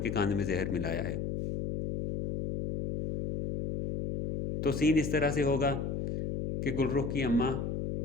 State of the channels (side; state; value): left; noise; hum, 2 dB below the sound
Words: खाने में जहर मिलाया है। तो सीन इस तरह से होगा कि गुलरुख की अम्मा